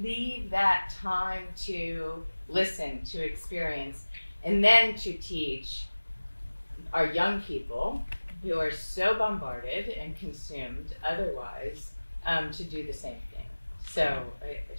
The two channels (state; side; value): inverted; both; correlation -1.00